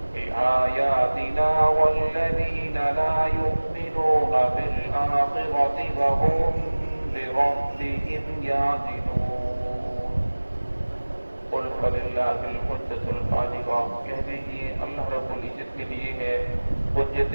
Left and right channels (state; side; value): inverted; both; correlation -1.00